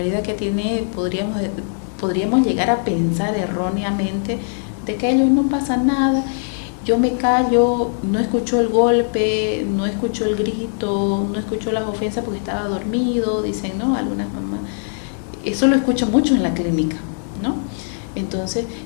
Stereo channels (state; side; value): silent; right; 58 dB below the other